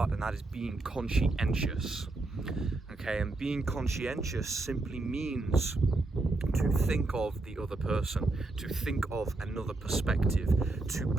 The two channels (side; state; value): left; quieter; 3.1 dB